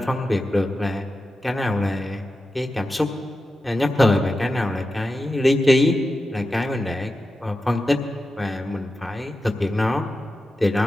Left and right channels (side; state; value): both; normal; correlation 0.91